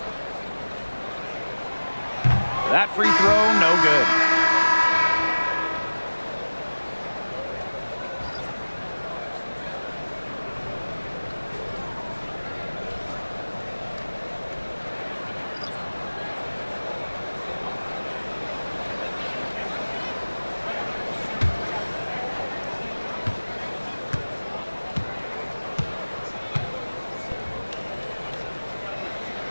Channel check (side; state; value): both; inverted; correlation -1.00